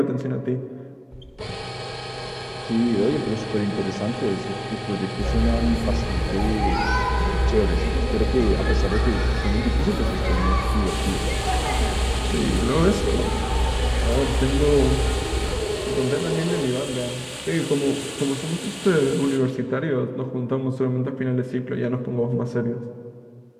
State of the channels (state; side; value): identical; both; correlation 1.00